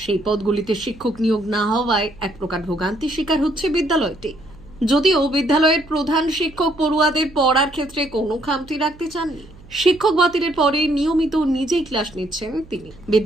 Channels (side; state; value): right; noise; hum, 22 dB below the sound